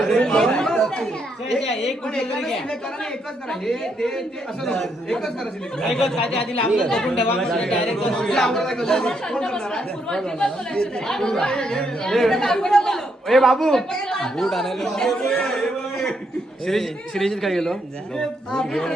एक पण एकच करा ना, एकच करा. हे ते असं नको. एकच करा सिलेक्ट. एकच काय ते आधी लांब बघून ठेवा. डायरेक्ट ए बाबू बूट आणायला श्रीजित काय गेलो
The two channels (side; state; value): both; normal; correlation 0.76